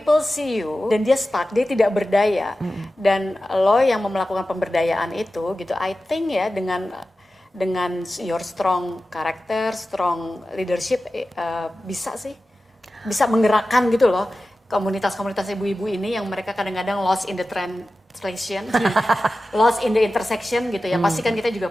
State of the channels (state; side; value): normal; both; correlation 0.94